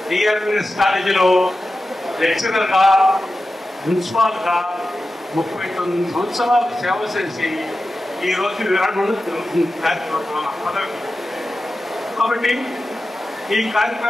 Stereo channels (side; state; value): both; normal; correlation 0.93